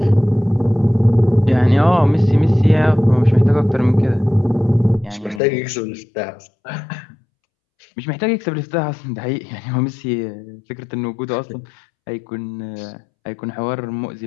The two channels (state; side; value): drops out; right; at 5.4 s